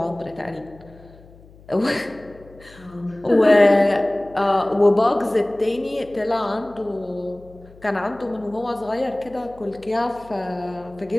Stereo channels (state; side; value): noise; left; hum, 24 dB below the sound